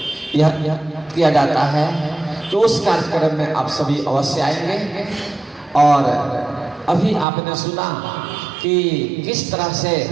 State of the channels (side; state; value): left; drops out; at 7.2 s